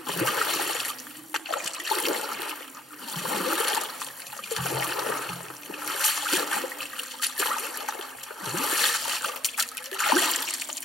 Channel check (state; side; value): normal; both; correlation 0.67